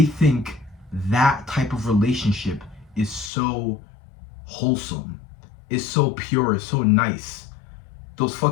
think that type of relationship is so wholesome, is so pure, is so nice. Those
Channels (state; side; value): drops out; right; at 3.3 s